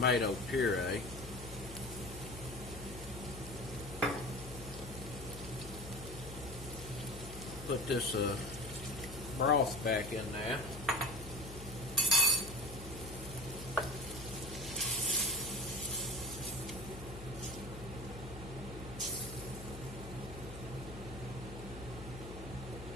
puree. Put this broth back in there.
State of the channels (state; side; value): noise; left; hum, 12 dB below the sound